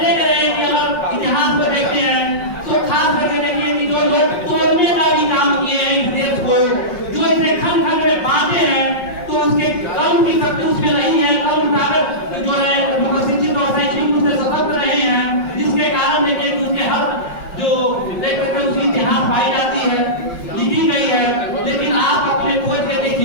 रहे हैं कि अगर इतिहास को देखते हैं तो खास करके देखिए कि जो लोग तोड़ने का भी काम किए हैं इस देश को, जो इसे खंड खंड में बांटे हैं, तो उसके कर्म की शक्ति उसमें नहीं है। कर्म ताकत जो है शिक्षित और शैक्षणिक रूप से सशक्त रहे हैं, जिसके कारण देखिए कि उसके हर जो देख सकते हैं उसकी इतिहास पाई जाती है, लिखी गई है। लेकिन आप अपने खोज के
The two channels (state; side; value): late; right; 5.5 ms